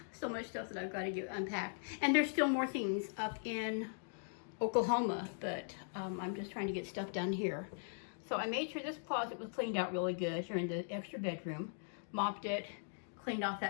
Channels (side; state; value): right; silent; digital silence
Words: So much stuff that I've got to get unpacked. And there's still more things up in Oklahoma, but I'm just trying to get stuff done here. So I made sure this closet was cleaned out really good here in the extra bedroom, mopped it, cleaned off